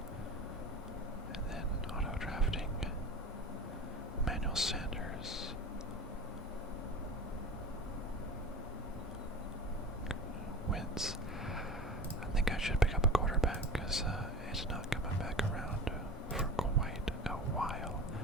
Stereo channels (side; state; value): both; normal; correlation 0.34